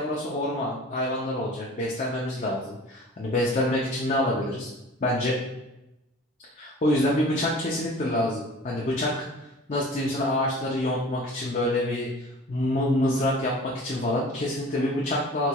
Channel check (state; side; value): normal; both; correlation 0.43